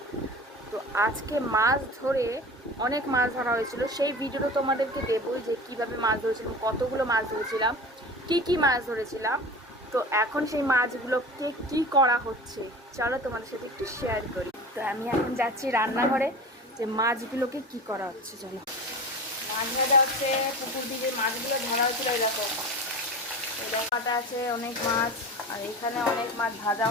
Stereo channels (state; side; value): normal; both; correlation 0.34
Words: তো আজকে মাছ ধরে অনেক মাছ ধরা হয়েছিল, সেই ভিডিওটা তোমাদেরকে দেবো যে কীভাবে মাছ ধরেছিলাম, কতগুলো মাছ ধরেছিলাম, কী মাছ ধরেছিলাম। তো এখন সেই মাছগুলোকে কি করা হচ্ছে চলো তোমাদের সাথে একটু শেয়ার করি। তো আমি এখন যাচ্ছি রান্নাঘরে, যে মাছগুলোকে কি করা হচ্ছে চলো। মাছ ভাজা হচ্ছে, পুকুর দিয়ে মাছগুলো ধরা হয়েছিল এরকম কাটা আছে অনেক মাছ, আর এখানে অনেক মাছ ভাজা